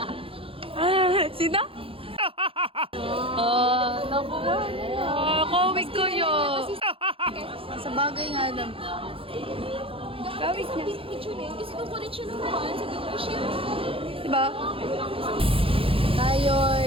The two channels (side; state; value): left; late; 0.27 ms